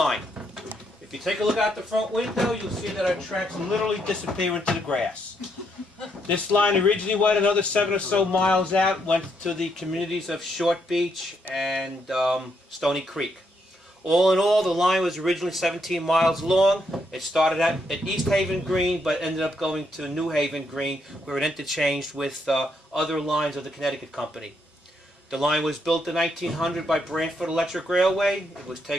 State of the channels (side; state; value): both; normal; correlation 0.76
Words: If you take a look out the front window, you'll see that our tracks literally disappear into the grass. This line originally went another 7 or so miles out, went to the communities of Short Beach and Stony Creek. All in all, the line was originally 17 miles long. It started at East Haven Green, but ended up going to New Haven Green, where it interchanged with other lines of the Connecticut Company. The line was built in 1900 by Branford Electric Railway. It was